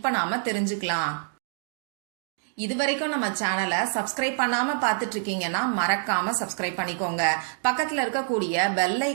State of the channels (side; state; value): left; silent; digital silence